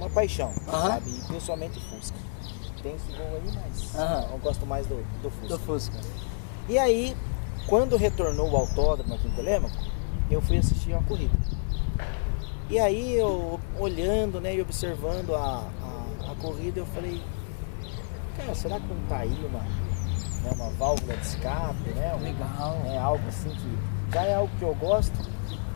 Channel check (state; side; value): silent; right; digital silence